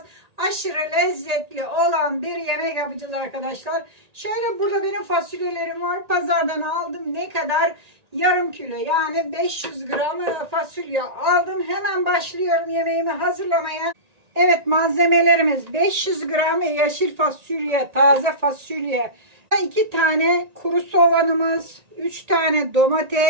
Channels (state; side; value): late; left; 1.9 ms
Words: Aşırı lezzetli olan bir yemek yapacağız arkadaşlar. Şöyle burada benim fasulyelerim var. Pazardan aldım. Ne kadar? Yarım kilo, yani 500 gram fasulye aldım. Hemen başlıyorum yemeğimi hazırlamaya. Evet, malzemelerimiz 500 gram yeşil fasulye, taze fasulye, 2 tane kuru soğanımız, 3 tane